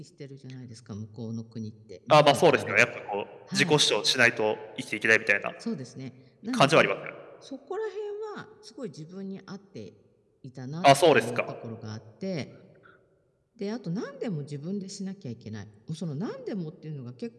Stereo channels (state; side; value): identical; both; correlation 1.00